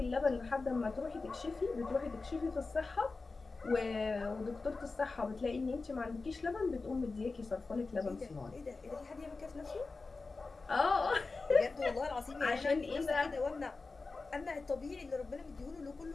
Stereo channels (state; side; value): quieter; right; 3.9 dB